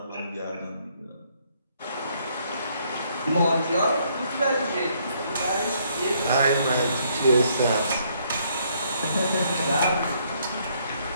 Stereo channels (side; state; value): both; inverted; correlation -0.69